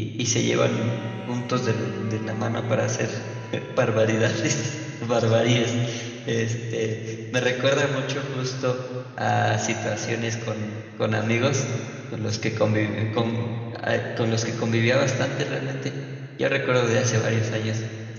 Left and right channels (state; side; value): identical; both; correlation 1.00